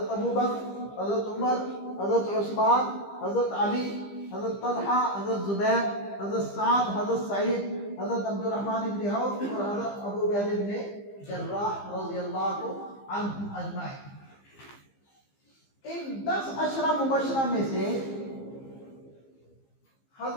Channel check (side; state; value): right; late; 15 ms